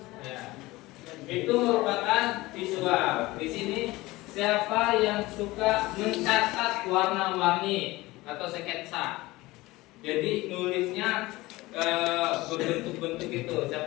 Ya. Itu merupakan visual. Di sini siapa yang suka mencatat warna-warni atau sketsa? Jadi nulisnya berbentuk-bentuk itu.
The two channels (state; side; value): quieter; right; 19.8 dB